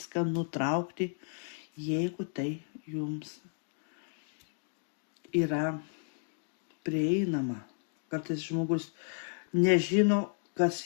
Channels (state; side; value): silent; right; 56 dB below the other